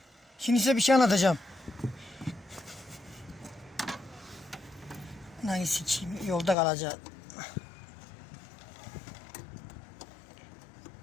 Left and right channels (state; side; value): drops out; right; at 6.6 s